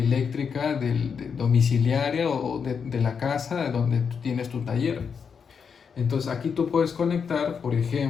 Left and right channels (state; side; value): quieter; right; 6.4 dB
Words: domiciliaria o de la casa donde tú tienes tu taller. Entonces aquí tú puedes conectar, por